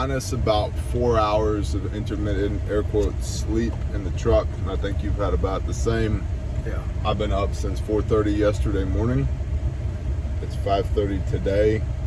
about 4 hours of intermittent air quotes sleep in the truck, and I think you've had about the same. Yeah. I've been up since 4:30 yesterday morning. It's 5:30 today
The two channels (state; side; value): identical; both; correlation 1.00